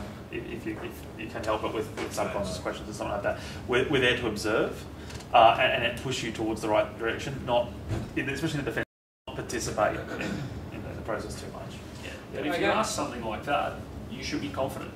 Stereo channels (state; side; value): identical; both; correlation 1.00